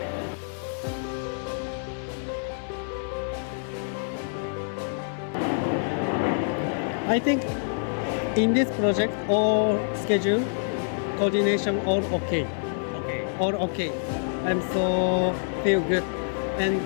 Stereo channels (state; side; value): silent; right; digital silence